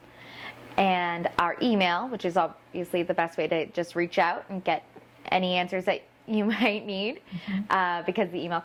And our email, which is obviously the best way to just reach out and get any answers that you might need, because the email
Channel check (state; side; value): identical; both; correlation 1.00